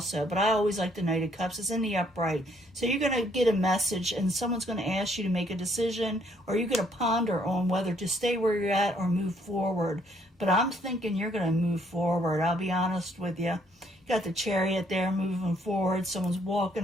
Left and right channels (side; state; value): both; normal; correlation 0.67